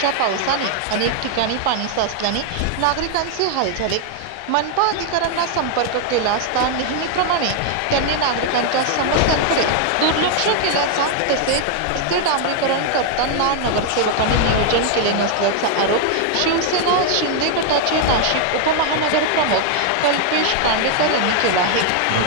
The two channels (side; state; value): both; different; correlation 0.00